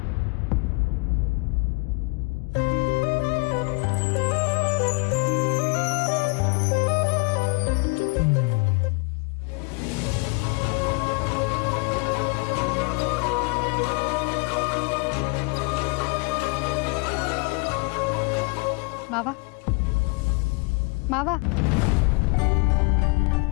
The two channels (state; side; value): quieter; right; 30.4 dB